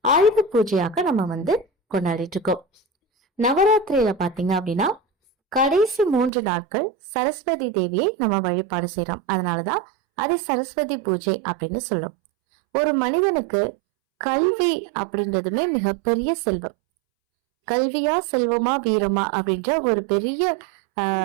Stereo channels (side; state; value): left; drops out; at 6.3 s